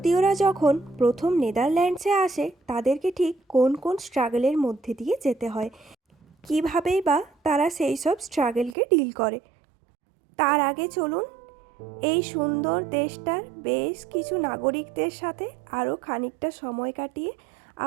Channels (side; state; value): left; drops out; at 8.8 s